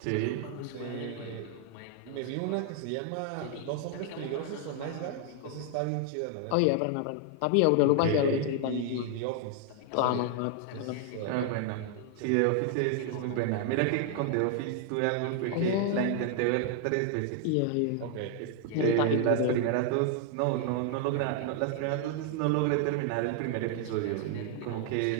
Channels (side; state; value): both; different; correlation 0.00